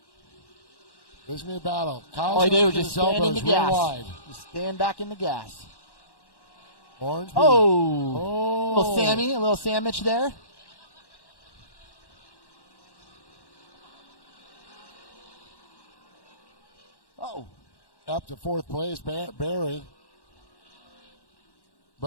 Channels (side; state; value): right; late; 1.1 ms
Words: This is a battle. Kyle's he did just stand in the gas. Wide. Just stand back in the gas. Ormsby. A little sandwich there. up to fourth place, Barry.